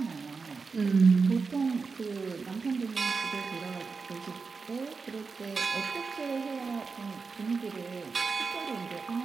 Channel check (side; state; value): left; quieter; 4.7 dB